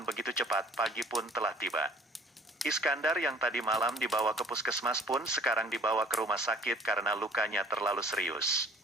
begitu cepat, pagi pun telah tiba. Iskandar yang tadi malam dibawa ke puskesmas pun sekarang dibawa ke rumah sakit karena lukanya terlalu serius.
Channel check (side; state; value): both; normal; correlation 0.53